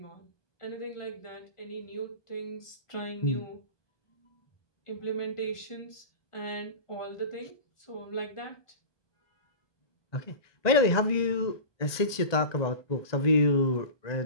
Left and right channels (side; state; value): right; late; 1.2 ms